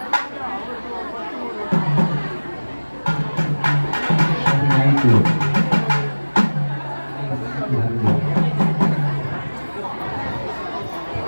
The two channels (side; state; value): both; inverted; correlation -1.00